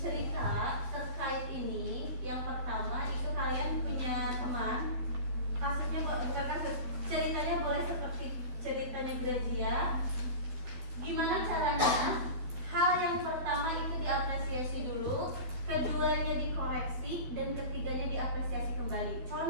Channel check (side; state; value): left; late; 12 ms